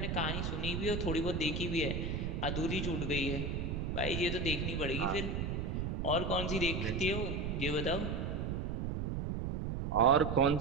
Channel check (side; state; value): right; noise; rumble, 2 dB below the sound